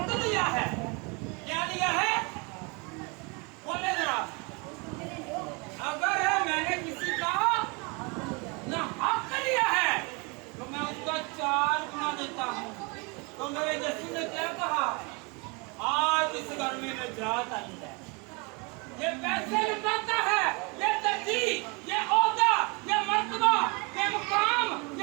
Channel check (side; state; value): left; quieter; 30.3 dB